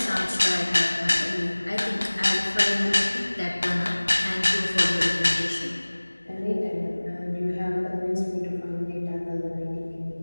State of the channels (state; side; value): inverted; both; correlation -1.00